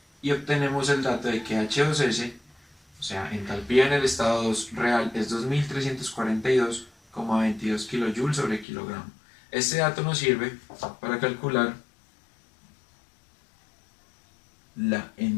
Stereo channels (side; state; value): right; drops out; at 8.7 s